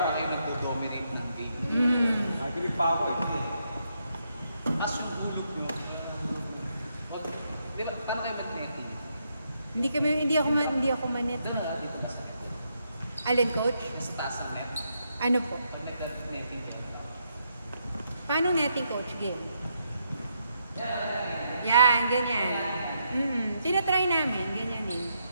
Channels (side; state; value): both; inverted; correlation -0.78